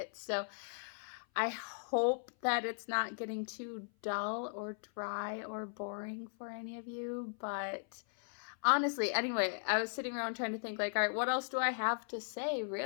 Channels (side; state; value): right; silent; 53 dB below the other